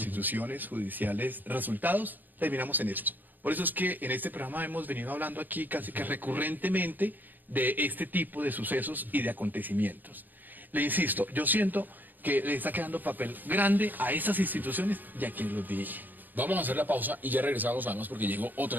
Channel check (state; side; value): late; left; 0.087 ms